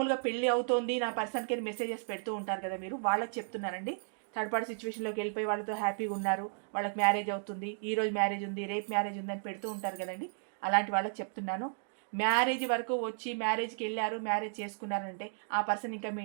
పెళ్ళి అవుతోంది నా పర్సన్కి మెసేజెస్ పెడుతూ ఉంటారు కదా మీరు, వాళ్ళకి చెప్తున్నారండి. థర్డ్ పార్టీ సిచ్యువేషన్లోకి వెళ్ళిపోయి వాళ్ళతో హ్యాపీగా ఉన్నారు, వాళ్ళకి మ్యారేజ్ అవుతుంది, ఈరోజు మ్యారేజ్ ఉంది, రేపు మ్యారేజ్ ఉంది అని పెడుతూ ఉంటారు కదండి. అలాంటి వాళ్ళకి చెప్తున్నాను, మ్యారేజ్ వరకు వచ్చి మ్యారేజ్కి వెళ్ళారు, మ్యారేజ్ చేసుకున్నారంటే ఆ పర్సన్ ఇంకా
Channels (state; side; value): silent; left; digital silence